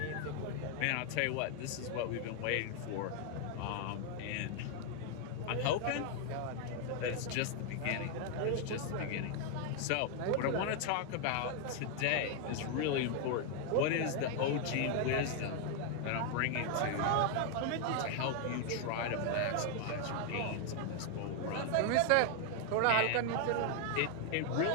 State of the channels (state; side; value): different; both; correlation 0.00